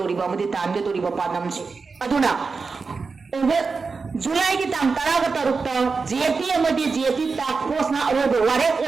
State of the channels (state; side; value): quieter; left; 4.6 dB